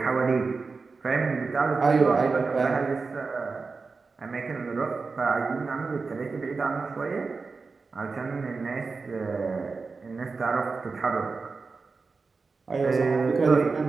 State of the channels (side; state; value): left; quieter; 4.4 dB